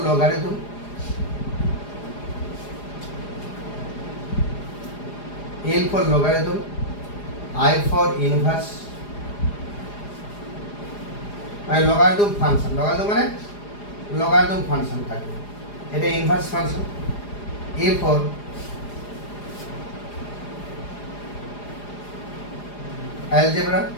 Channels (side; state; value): right; late; 4.9 ms